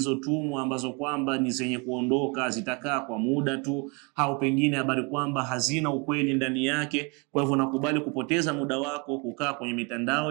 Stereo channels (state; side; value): quieter; left; 29.7 dB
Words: ambazo kwamba ni zenye kuondoka, zitakaa kwa muda tu, au pengine habari kwamba hazina ukweli ndani yake. Kwa hivyo unakubali kupoteza muda wako kukaa kwenye